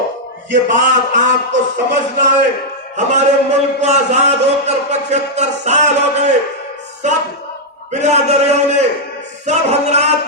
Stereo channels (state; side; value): normal; both; correlation -0.04